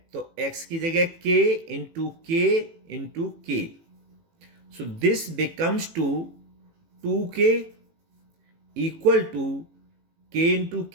तो x की जगह k into k. So this becomes two 2k equal to k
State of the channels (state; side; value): late; left; 18 ms